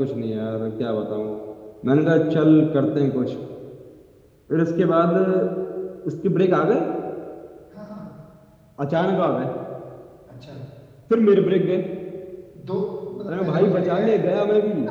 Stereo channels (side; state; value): both; identical; correlation 1.00